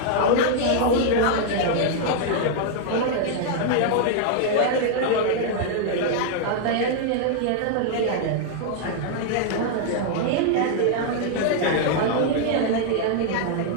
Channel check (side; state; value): both; different; correlation 0.00